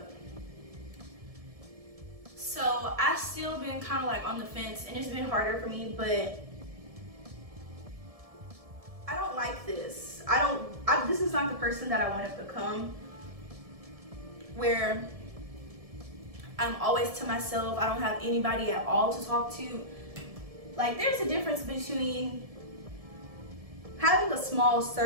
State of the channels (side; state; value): left; late; 1.7 ms